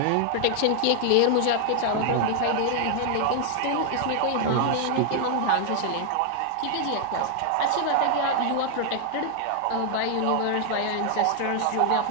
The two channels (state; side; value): different; both; correlation 0.00